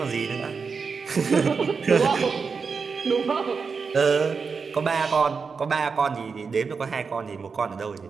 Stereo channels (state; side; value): quieter; left; 5.2 dB